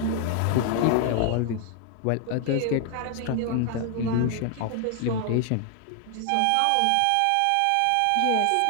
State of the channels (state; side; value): different; both; correlation 0.00